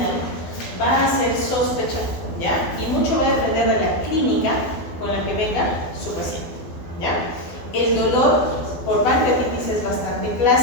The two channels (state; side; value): late; right; 12 ms